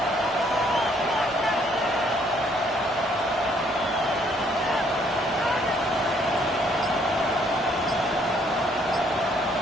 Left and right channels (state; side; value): normal; both; correlation 0.66